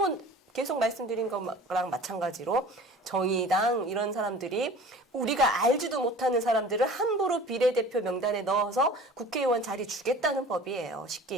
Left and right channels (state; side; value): normal; both; correlation 0.43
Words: 계속 말씀드린 거랑 마찬가지로 정의당 이런 사람들이 우리가 알지도 못하는 사람들을 함부로 비례대표 명단에 넣어서 국회의원 자리 주겠다는 법이에요.